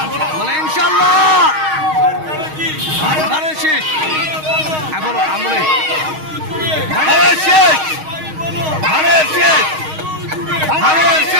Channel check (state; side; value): late; left; 6.4 ms